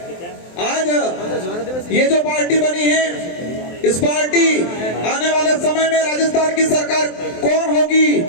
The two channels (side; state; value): right; late; 23 ms